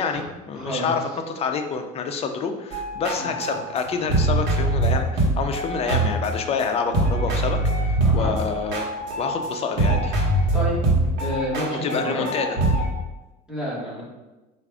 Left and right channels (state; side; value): normal; both; correlation 0.21